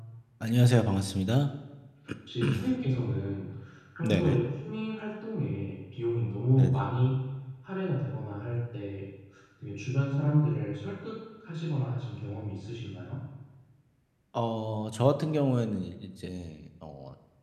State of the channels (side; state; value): both; identical; correlation 1.00